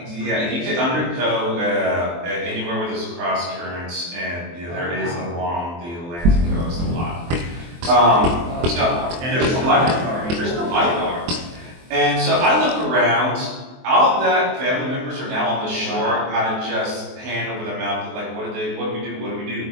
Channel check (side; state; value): left; late; 23 ms